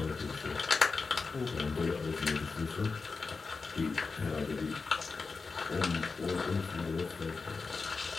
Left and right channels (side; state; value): right; quieter; 4.5 dB